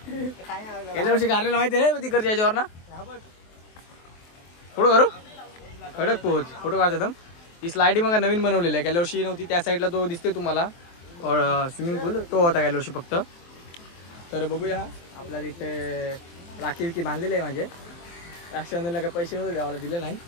गेल्या वर्षी कारलेला माहिती आहे ना तिकडच्या याच्यावर ना. फोटो करू खडक पोहोच फोटो काढतो एकदम. ही स्लायडिंग मग नवीन बनवलेली आहे, गेल्या वर्षी नव्हती. त्या साईडला तो दिसतोय तुम्हाला स्विमिंग पूल, तो होता गेल्या वर्षी फक्त. तर बघूया आपल्या तिथे राखी विकी बांधलेले आहे माझे. रक्षाबंधनला काय पैसे नव्हते द्यावाला, दिले नाही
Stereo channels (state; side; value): late; right; 23 ms